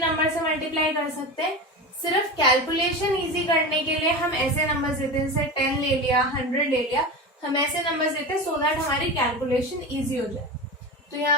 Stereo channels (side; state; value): both; normal; correlation 0.26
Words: से मल्टीप्लाई कर सकते हैं। सिर्फ कैलकुलेशन इजी करने के लिए हम ऐसे नंबर देते हैं, जैसे 10 ले लिया, 100 ले लिया, हम ऐसे नंबर देते हैं सो दैट हमारी कैलकुलेशन इजी हो जाए। तो यहाँ